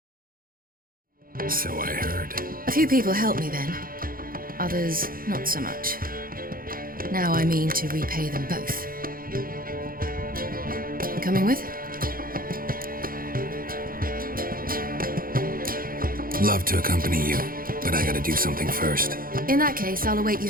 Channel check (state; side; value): late; left; 0.42 ms